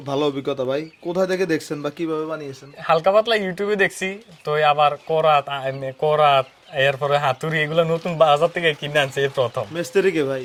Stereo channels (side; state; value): both; identical; correlation 1.00